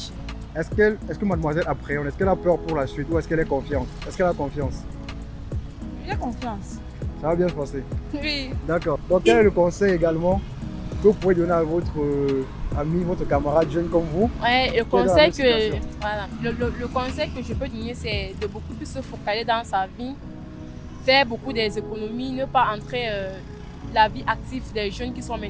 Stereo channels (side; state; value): both; identical; correlation 1.00